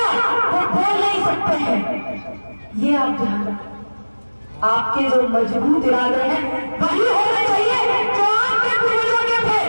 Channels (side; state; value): both; inverted; correlation -1.00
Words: वो बोल नहीं सकते हैं। ये आप ध्यान रखें। आपके जो मजबूत इरादे हैं वही होने चाहिए जो आपके पूर्वजों के थे।